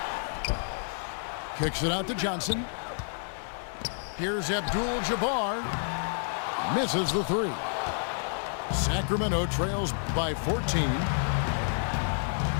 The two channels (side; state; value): right; silent; digital silence